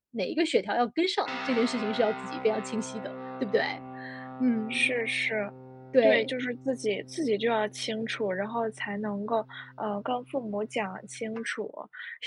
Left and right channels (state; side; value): identical; both; correlation 1.00